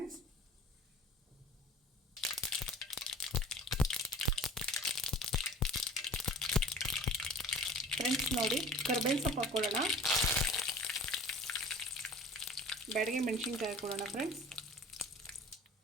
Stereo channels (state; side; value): normal; both; correlation 0.44